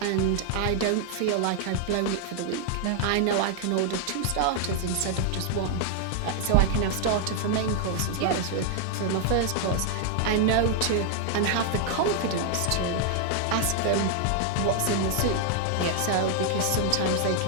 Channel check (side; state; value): both; different; correlation 0.00